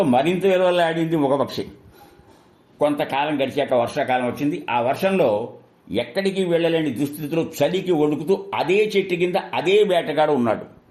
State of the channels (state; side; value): identical; both; correlation 1.00